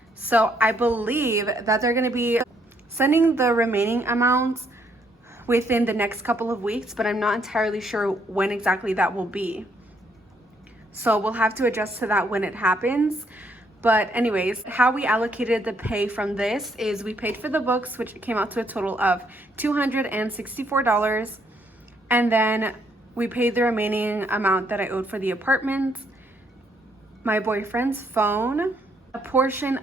So I believe that they're gonna be sending the remaining amounts within the next couple of weeks, but I'm not entirely sure when exactly that will be. So we'll have to adjust to that when it happens. But anyways, how we allocated the pay from this is we paid for the books, which came out to a total of $264. And then we paid the remaining amount that I owed for the apartment, my boyfriend's phone, a portion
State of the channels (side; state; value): both; normal; correlation 0.71